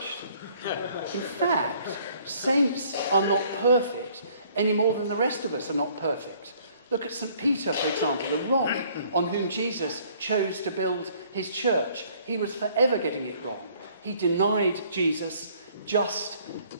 In fact, Saints are not perfect any more than the rest of us are not perfect. Look at St. Peter, for example, the rock on whom Jesus chose to build his church. He was forever getting it wrong. He denied Jesus just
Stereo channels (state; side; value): inverted; both; correlation -0.59